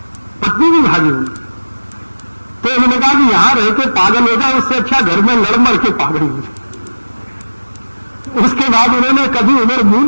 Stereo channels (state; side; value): inverted; both; correlation -1.00